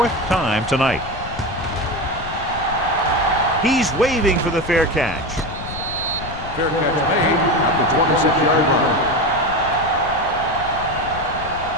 time tonight. He's waving for the fair catch. Fair catch made at the 26-yard line.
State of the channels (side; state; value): left; noise; rumble, 12 dB below the sound